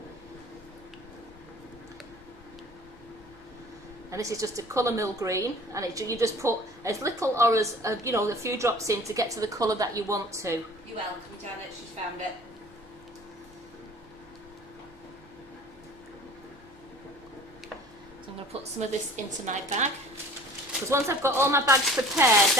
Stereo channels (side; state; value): both; normal; correlation 0.47